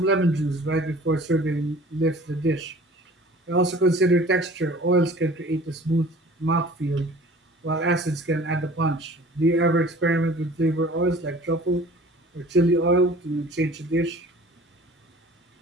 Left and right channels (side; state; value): both; normal; correlation 0.47